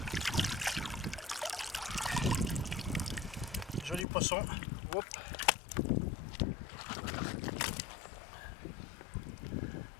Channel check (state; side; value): drops out; right; at 4.0 s